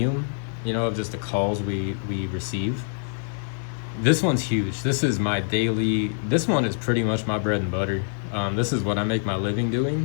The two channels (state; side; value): silent; right; digital silence